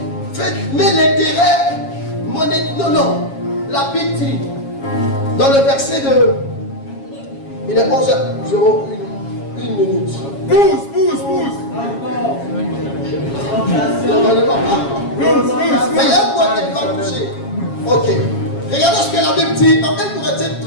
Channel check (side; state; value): right; late; 7.3 ms